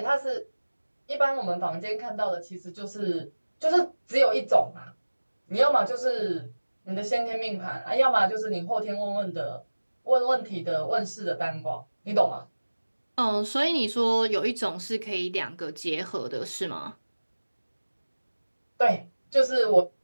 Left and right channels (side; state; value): both; inverted; correlation -1.00